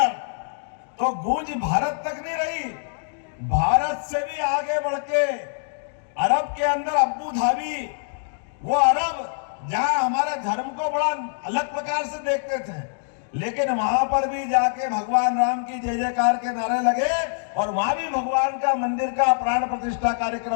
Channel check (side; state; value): right; silent; digital silence